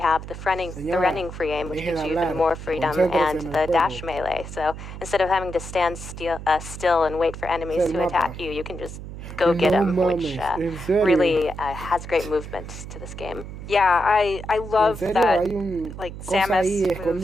the running free aim, which gives you even more freedom, and the dash melee. So instead of having to stand still and wait for enemies to attack you, you can just go get them, which really has great movement to this game. Yeah, I love that, like, Samus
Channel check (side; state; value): right; noise; hum, 11 dB below the sound